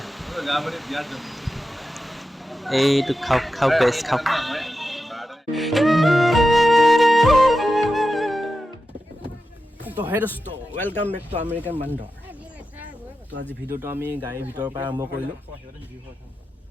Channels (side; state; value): both; normal; correlation 0.91